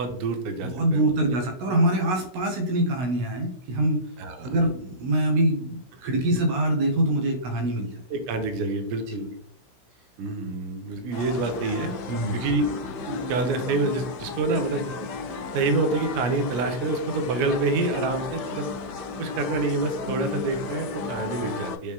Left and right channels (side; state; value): left; late; 16 ms